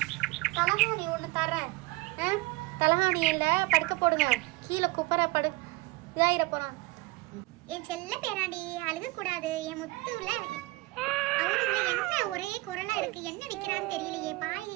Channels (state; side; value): quieter; left; 22.6 dB